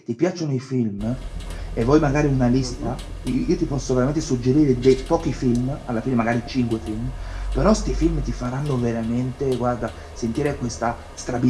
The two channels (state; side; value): identical; both; correlation 1.00